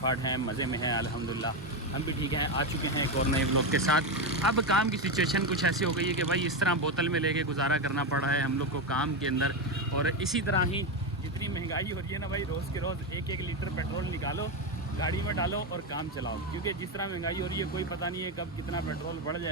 हैं, मज़े में हैं अल्हम्दुलिल्लाह। हम भी ठीक हैं। आ चुके हैं एक और नए व्लॉग के साथ। अब काम की सिचुएशन कुछ ऐसी हो गई है कि भाई इस तरह बोतल में लेके गुजारा करना पड़ रहा है हम लोग को काम के अंदर। और इसी तरह ही जितनी महंगाई हो रही है ना भाई, रोज़ के रोज़ एक एक लीटर पेट्रोल निकालो, गाड़ी में डालो और काम चलाओ। क्योंकि जिस तरह महंगाई हो रही है कोई पता नहीं है कब कितना पेट्रोल बढ़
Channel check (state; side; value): normal; both; correlation 0.11